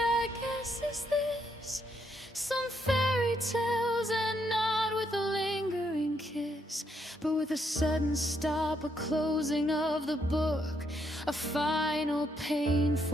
I guess, is this: some fairy tales end not with a lingering kiss, but with a sudden stop, a closing of the book, a final,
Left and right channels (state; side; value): normal; both; correlation 0.76